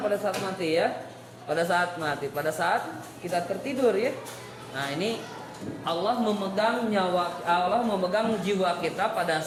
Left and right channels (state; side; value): identical; both; correlation 1.00